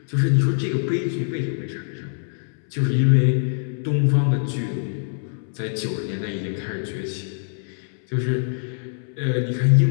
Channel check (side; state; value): right; silent; 63 dB below the other